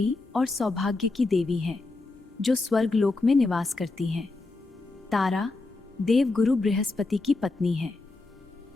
और सौभाग्य की देवी है जो स्वर्गलोक में निवास करती हैं। तारा देवगुरु बृहस्पति की पत्नी है।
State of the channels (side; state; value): right; quieter; 3.4 dB